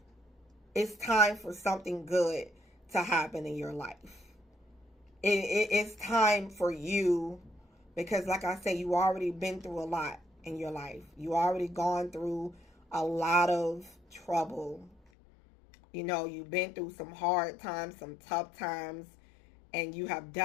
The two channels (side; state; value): right; drops out; at 15.0 s